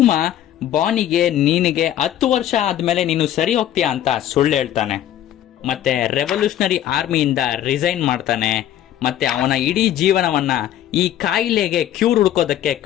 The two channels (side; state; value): right; quieter; 11.8 dB